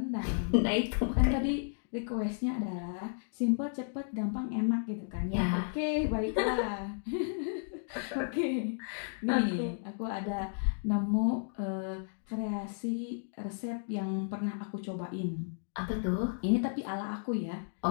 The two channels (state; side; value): silent; right; digital silence